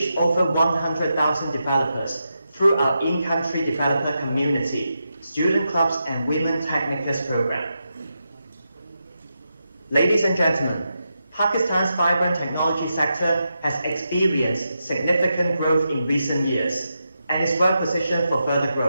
over 100,000 developers through our in-country developer community, student clubs, and Women Technicus program. Ladies and gentlemen, Pakistan's vibrant technology sector has experienced significant growth in recent years and is well positioned for further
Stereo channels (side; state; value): both; inverted; correlation -0.86